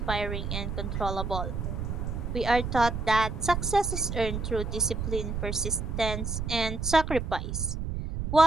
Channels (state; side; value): noise; right; rumble, 3 dB below the sound